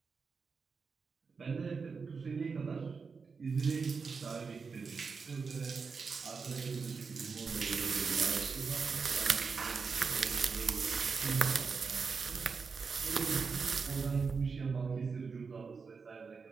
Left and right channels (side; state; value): left; quieter; 5.1 dB